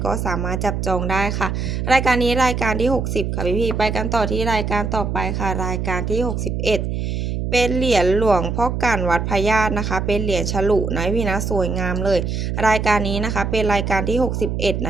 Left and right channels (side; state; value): right; noise; hum, 2 dB below the sound